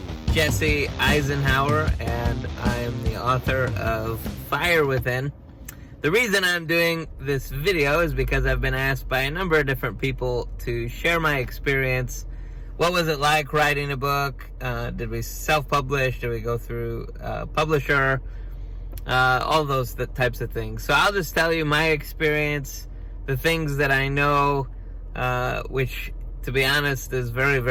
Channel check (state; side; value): identical; both; correlation 1.00